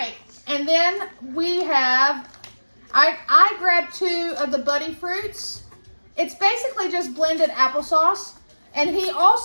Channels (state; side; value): inverted; both; correlation -1.00